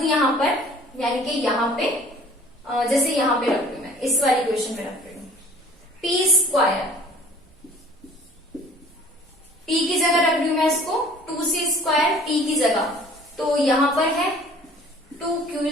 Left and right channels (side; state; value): both; normal; correlation 0.51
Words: यहां पर, यानी कि यहां पे जैसे यहां पे रख रही मैं, इस वाली इक्वेशन में रख रही हूं P स्क्वायर, P की जगह रख रही हूं मैं इसको 2C स्क्वायर P की जगह, तो यहां पर है